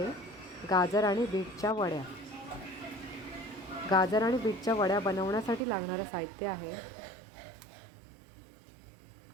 गाजर आणि बीटच्या वड्या। गाजर आणि बीटच्या वड्या बनवण्यासाठी लागणारं साहित्य आहे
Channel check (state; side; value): drops out; left; at 5.6 s